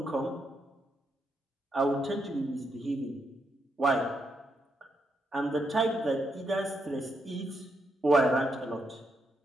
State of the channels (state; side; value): normal; both; correlation 0.80